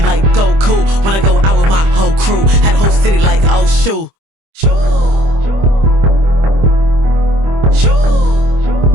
like Goku. When I go out with my whole crew, had a whole city like oh shoot.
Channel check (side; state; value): left; late; 25 ms